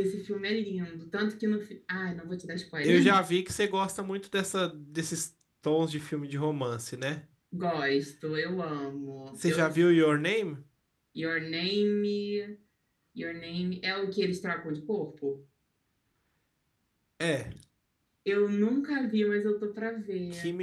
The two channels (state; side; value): identical; both; correlation 1.00